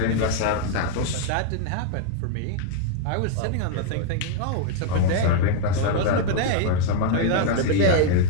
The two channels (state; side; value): different; both; correlation 0.00